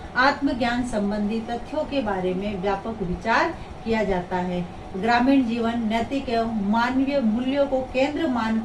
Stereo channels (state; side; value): identical; both; correlation 1.00